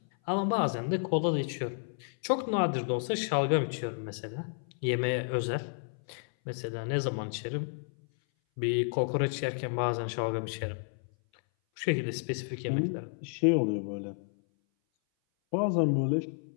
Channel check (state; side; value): silent; right; 57 dB below the other